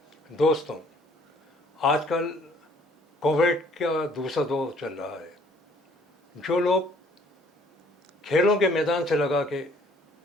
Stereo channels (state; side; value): normal; both; correlation 0.59